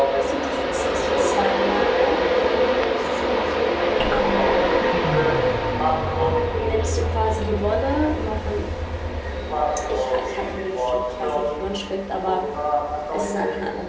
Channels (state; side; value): identical; both; correlation 1.00